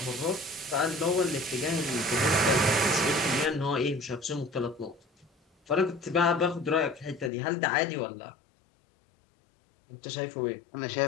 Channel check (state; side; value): drops out; right; at 7.3 s